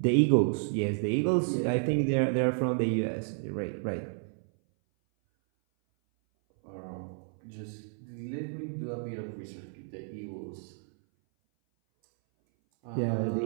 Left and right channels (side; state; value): left; silent; 57 dB below the other